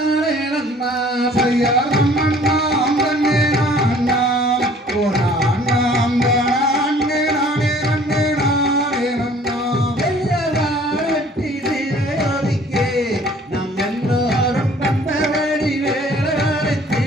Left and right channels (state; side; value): normal; both; correlation 0.54